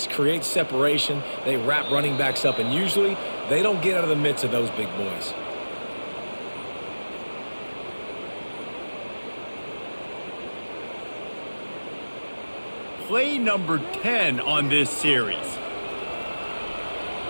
create separation. They wrap running backs up, and usually they don't get out of the midst of those big boys. Play number 10 on this series.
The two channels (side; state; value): both; inverted; correlation -1.00